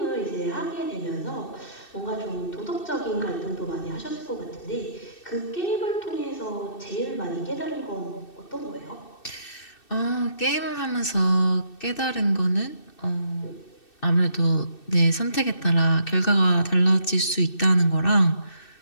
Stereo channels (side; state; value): right; late; 2.6 ms